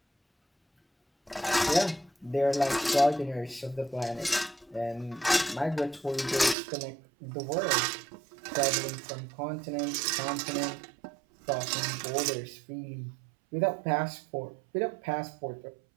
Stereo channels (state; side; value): drops out; left; at 6.6 s